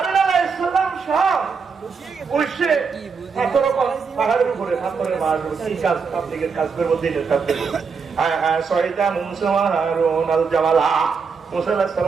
আলাইহিস সালাম সব উঠছে পাহাড়ের উপরে পাথরের মার কি কাজ পাবলিকের কাজ করবো দিনের কাজ করবো সহিতা মুসা হারুন আল জামালা মুসা আলাইহিস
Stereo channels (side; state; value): left; quieter; 5.4 dB